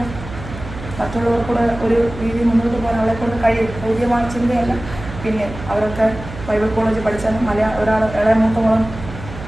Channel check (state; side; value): noise; right; hum, 12 dB below the sound